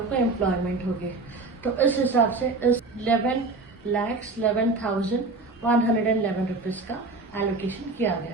को एम्प्लॉयमेंट होगी। तो इस हिसाब से इस 11,11,111 रुपीज का एलोकेशन किया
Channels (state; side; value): quieter; left; 3.6 dB